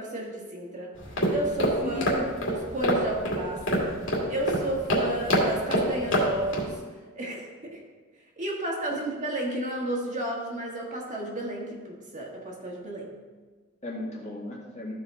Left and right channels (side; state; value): both; normal; correlation 0.10